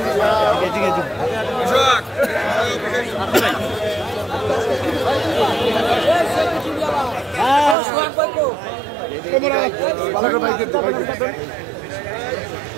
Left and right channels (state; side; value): drops out; left; at 7.8 s